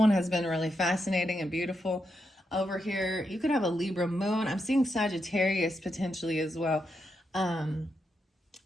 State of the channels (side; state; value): both; normal; correlation 0.84